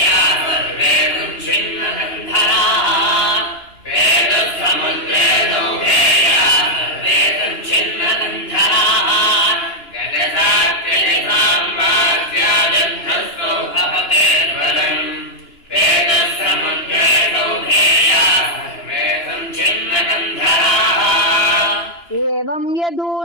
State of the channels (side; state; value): right; late; 2.9 ms